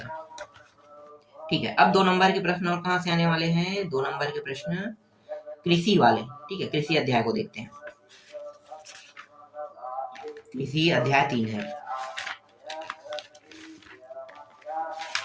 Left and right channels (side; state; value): both; identical; correlation 1.00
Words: ठीक है, अब 2 नंबर के प्रश्न और कहाँ से आने वाले हैं? 2 नंबर के प्रश्न कृषि वाले। ठीक है, कृषि अध्याय को देखते हैं। कृषि अध्याय 3 है।